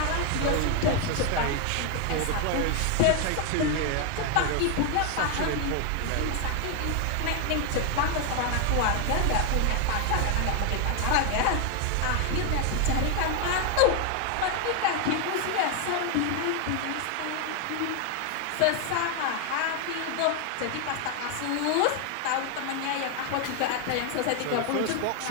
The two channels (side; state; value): both; different; correlation 0.01